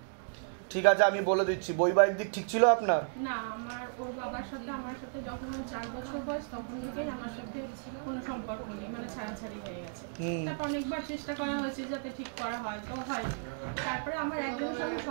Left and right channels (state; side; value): silent; left; digital silence